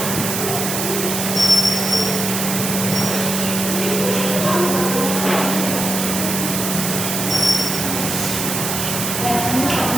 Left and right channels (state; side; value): noise; right; hiss, 2 dB below the sound